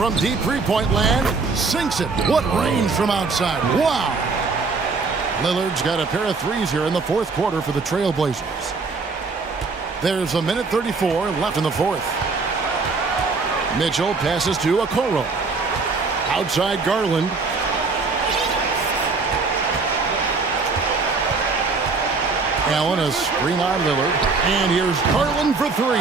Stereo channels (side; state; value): left; quieter; 4.3 dB